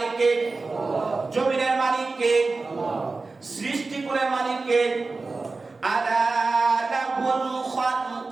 কে? জমিনের মালিক কে? সৃষ্টি করে মালিক কে? আলা লাহুল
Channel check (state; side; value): quieter; left; 3.8 dB